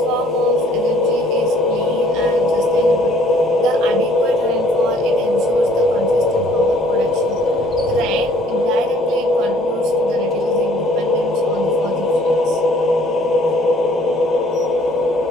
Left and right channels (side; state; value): right; noise; hum, 27 dB below the sound